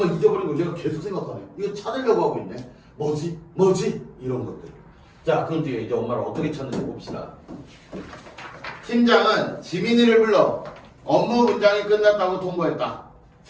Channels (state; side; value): identical; both; correlation 1.00